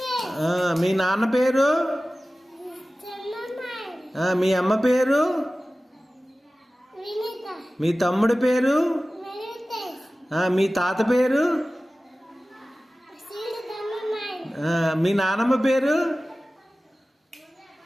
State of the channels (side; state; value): both; normal; correlation 0.96